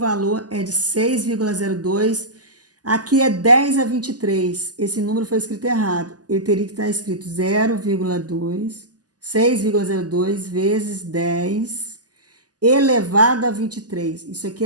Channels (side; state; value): left; late; 0.68 ms